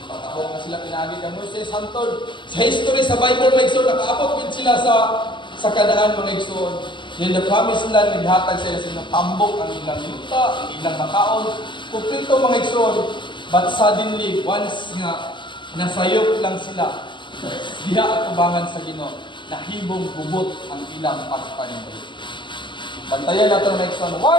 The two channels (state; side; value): late; right; 0.23 ms